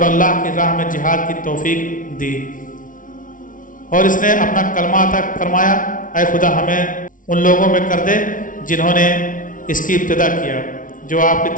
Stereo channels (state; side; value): late; right; 0.38 ms